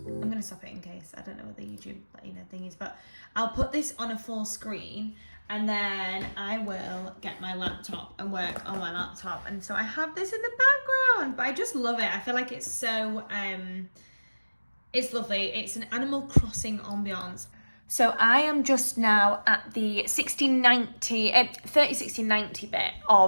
I'm gonna stop it in case I don't know what the YouTube thing is, but I'll put this on a full screen and then I will get my laptop and work on my laptop. And so I have this in the background, but I just love it. I feel like it's so it's lovely. It's an Animal Crossing ambiance. So I am just now at the 30-60-90 bit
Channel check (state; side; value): inverted; both; correlation -1.00